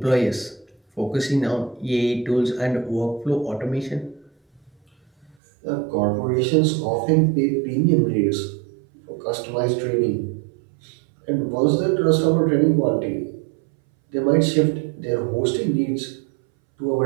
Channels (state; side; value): drops out; left; at 5.4 s